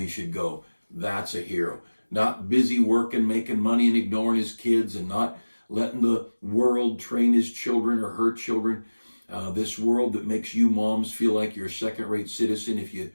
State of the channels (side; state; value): both; inverted; correlation -1.00